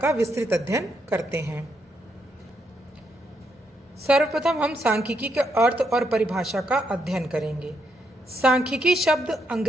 विस्तृत अध्ययन करते हैं। सर्वप्रथम हम सांख्यिकी के अर्थ और परिभाषा का अध्ययन करेंगे। सांख्यिकी शब्द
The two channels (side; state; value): both; normal; correlation 0.78